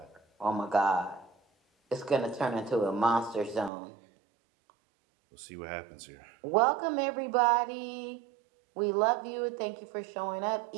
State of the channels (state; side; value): drops out; left; at 3.7 s